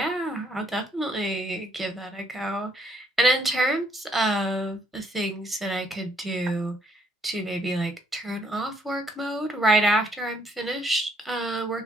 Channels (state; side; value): normal; both; correlation 0.68